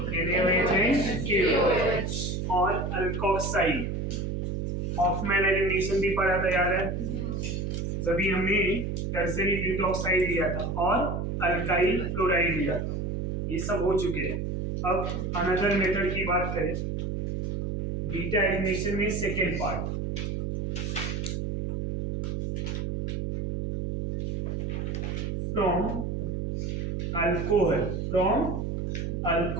NaOH KOH और अल्कोक्साइड. हॉफमैन एलिमिनेशन भी पढ़ा था, याद है? जब हमने टर्सरी ब्यूटॉक्साइड लिया था और अल्काइल फ्लोराइड लिया था. ये सब हो चुके हैं. अब अनदर मेथड की बात करें, बीटा एलिमिनेशन में second part. From alcohol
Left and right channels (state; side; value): noise; right; hum, 2 dB below the sound